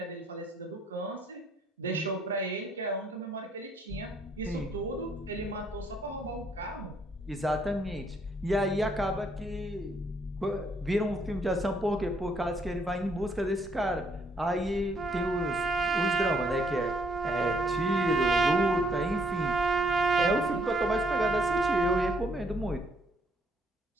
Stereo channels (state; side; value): normal; both; correlation 0.69